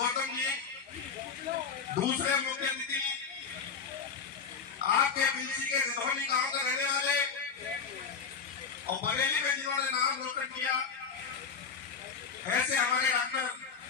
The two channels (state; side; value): quieter; right; 5.9 dB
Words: जी, दूसरे मुख्य अतिथि आपके बिलसी के रिधौनी गांव के रहने वाले और बरेली में जिन्होंने नाम रोशन किया, ऐसे हमारे डॉक्टर